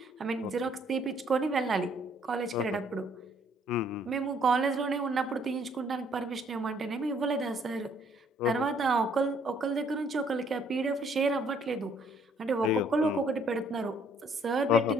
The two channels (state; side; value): normal; both; correlation 0.64